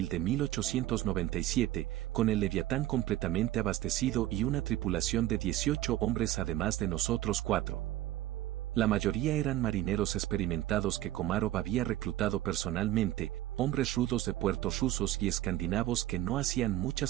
de 1897, con el Leviatán completamente abastecido y una tripulación de 18 hombres además de nosotros 4. La mayoría eran marineros experimentados que Komarov había reclutado personalmente, hombres rudos de puertos rusos y escandinavos que no hacían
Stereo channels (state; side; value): quieter; left; 14.7 dB